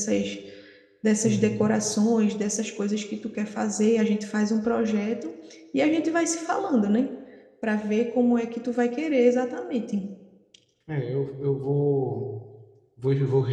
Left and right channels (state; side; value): identical; both; correlation 1.00